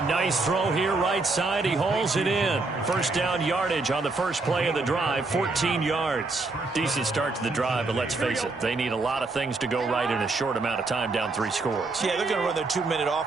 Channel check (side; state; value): left; quieter; 3.5 dB